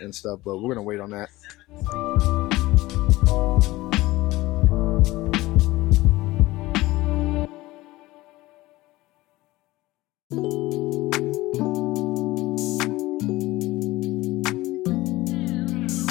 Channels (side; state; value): right; quieter; 18.7 dB